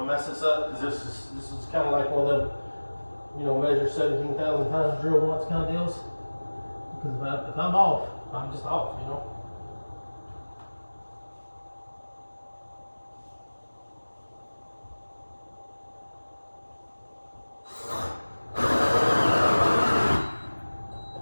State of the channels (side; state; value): both; inverted; correlation -1.00